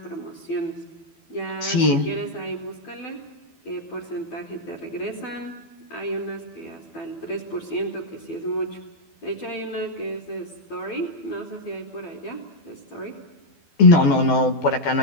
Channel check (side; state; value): right; late; 12 ms